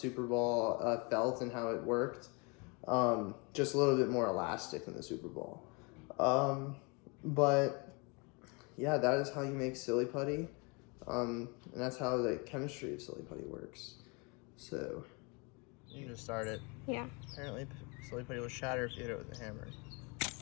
Ball felt and how it worked. Just a little bit more elastic than the Super Ball. But yeah, that is how you make silly putty. And that's how the chemistry of silly putty works. So, you can just start it. Yeah. Apparently, silly putty will shatter if you hit it with a hammer.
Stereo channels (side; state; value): right; quieter; 29.9 dB